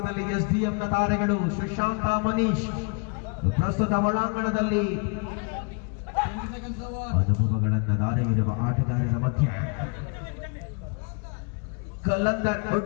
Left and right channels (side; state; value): right; quieter; 36.0 dB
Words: ಎಸ್ಡಿಎಂನ ತಾರೆಗಳು ಸುಶಾಂತ ಮನೀಶ್ ಪ್ರಸ್ತುತ ಒಳಾಂಗಣದಲ್ಲಿ ಅನುಭವಗಳನ್ನ ದಾರೆ ಇರುವ ಆಟಗಾರರ ಮಧ್ಯೆ ಕಲ್ಲಂದರ್